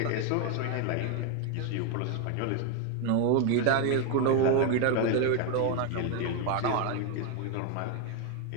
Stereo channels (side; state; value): both; different; correlation 0.01